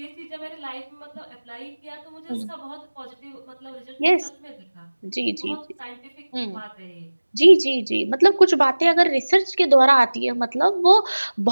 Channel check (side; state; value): both; inverted; correlation -1.00